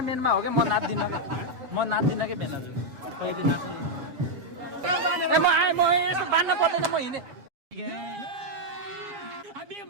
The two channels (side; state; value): left; late; 7.1 ms